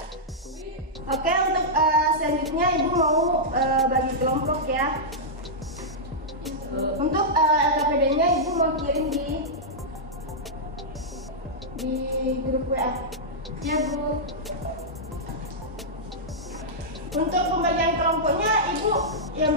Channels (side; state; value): both; normal; correlation -0.09